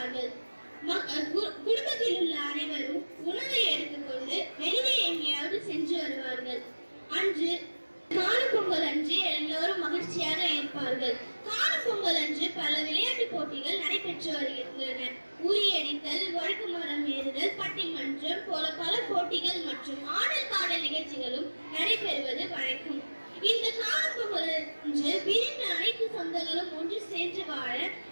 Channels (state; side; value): inverted; both; correlation -1.00